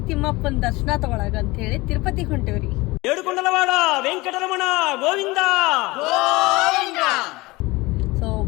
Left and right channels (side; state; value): right; quieter; 22.0 dB